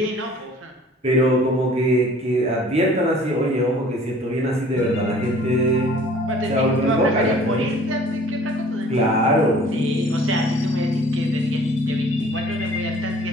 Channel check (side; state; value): both; normal; correlation 0.51